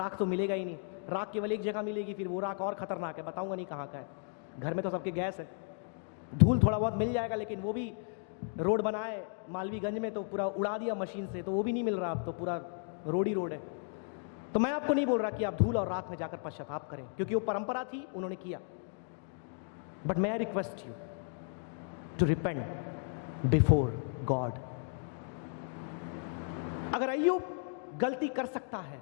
तो मिलेगा ही नहीं। राख केवल एक जगह मिलेगी, फिर वो राख और खतरनाक है, बताऊंगा नहीं कहाँ का है। घर में तो सबके गैस है। धूल थोड़ा बहुत मिल जाएगा, लेकिन वो भी रोड बनाए मालवीगंज में तो पूरा उड़ा दिया मशीन से, तो वो भी नहीं मिल रहा, अब तो पूरा रोड ही रोड है। तो मैं आपको नहीं बोल रहा कि आप धूल और राख में जाकर पश्चाताप करें, क्योंकि वो परंपरा थी, उन्होंने किया। But may I request you to repent before God। अगर अय्यूब गलती कर सकता है,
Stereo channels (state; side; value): silent; right; 55 dB below the other